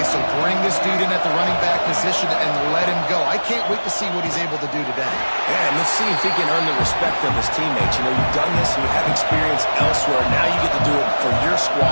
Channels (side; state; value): both; inverted; correlation -1.00